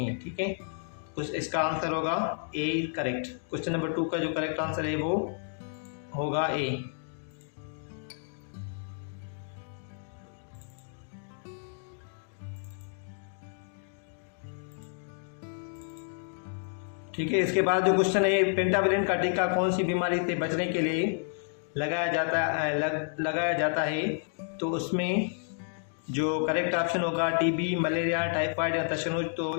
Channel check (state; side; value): silent; right; digital silence